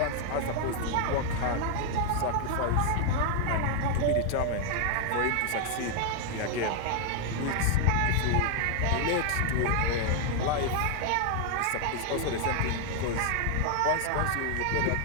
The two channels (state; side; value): different; both; correlation 0.00